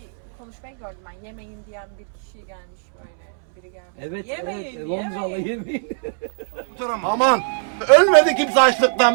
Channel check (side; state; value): left; silent; 64 dB below the other